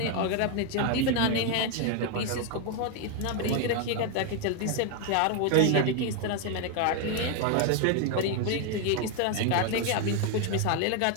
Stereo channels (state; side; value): different; both; correlation 0.01